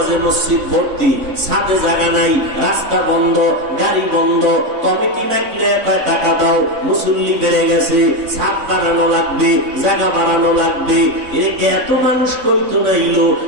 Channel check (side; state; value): left; late; 3.9 ms